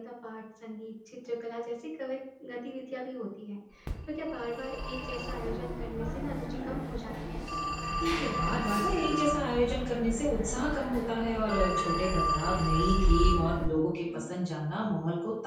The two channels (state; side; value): identical; both; correlation 1.00